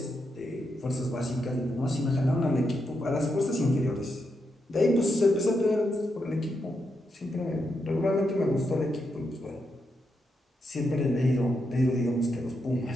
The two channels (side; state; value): both; normal; correlation 0.83